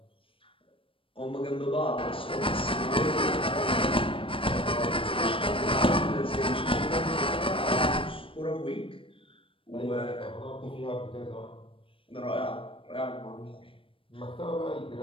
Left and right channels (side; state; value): right; late; 0.26 ms